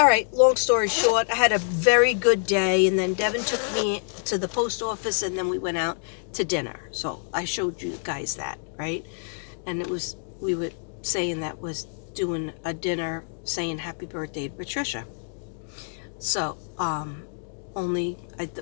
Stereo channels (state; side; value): silent; right; digital silence